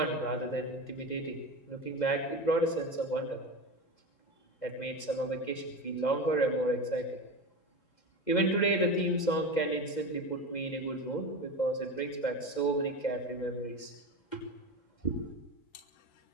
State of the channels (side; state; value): right; late; 2.1 ms